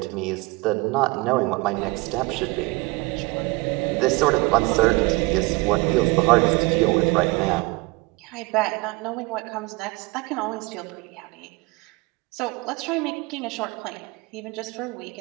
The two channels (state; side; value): quieter; left; 24.4 dB